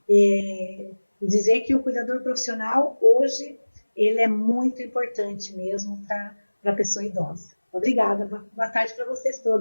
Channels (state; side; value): inverted; both; correlation -1.00